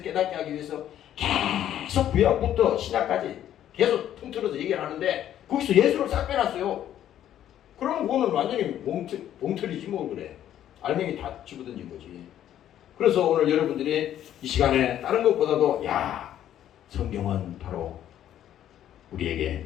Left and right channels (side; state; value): right; quieter; 11.2 dB